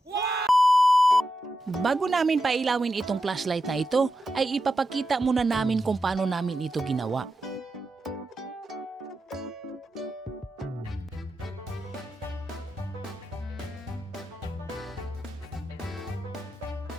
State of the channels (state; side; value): normal; both; correlation 0.88